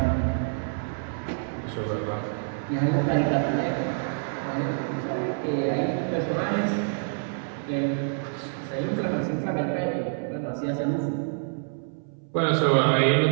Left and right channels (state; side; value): silent; left; 60 dB below the other